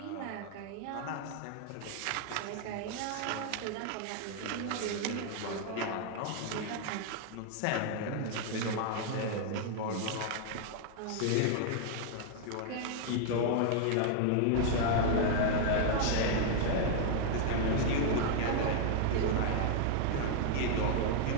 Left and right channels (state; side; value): different; both; correlation 0.00